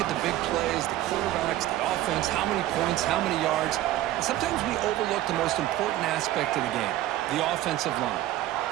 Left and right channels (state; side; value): quieter; left; 14.5 dB